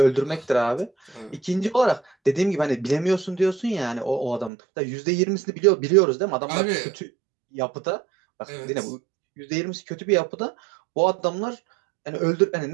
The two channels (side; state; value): left; drops out; at 4.5 s